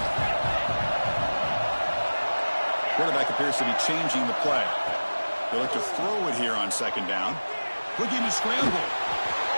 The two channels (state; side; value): inverted; both; correlation -1.00